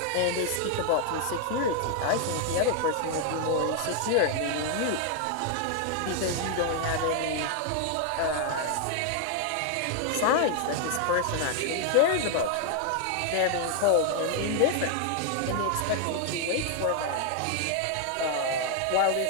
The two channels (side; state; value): both; different; correlation 0.00